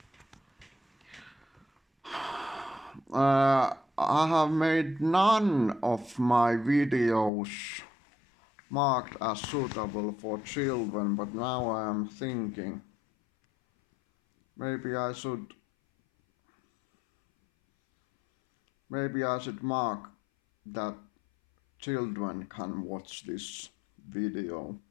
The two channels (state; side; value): drops out; right; at 7.3 s